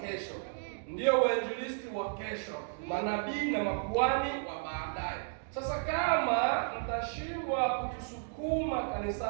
ndio wainjilisti wa kesho, manabii na makuhani wa baadaye. Sasa kama mtashindwa kutusukuma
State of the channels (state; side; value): silent; left; digital silence